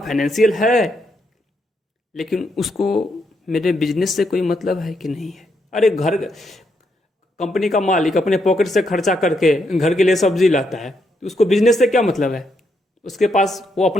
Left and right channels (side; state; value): both; normal; correlation 0.78